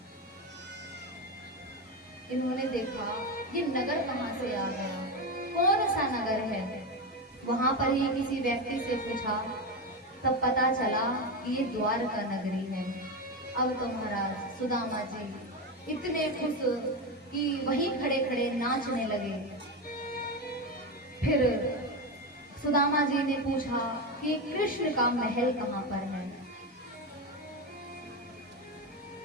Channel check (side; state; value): both; normal; correlation 0.15